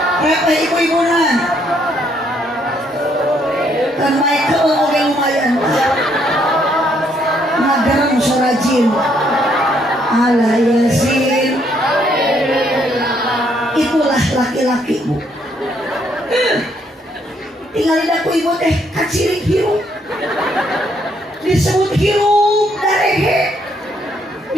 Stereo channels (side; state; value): both; normal; correlation 0.70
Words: repeh ibu-ibuna kan Michael oke lumayan ngagarang surajin ala yasin itulah laki-laki bu tinggalin aku ibu teh kacirik hirup disebut hirup darehe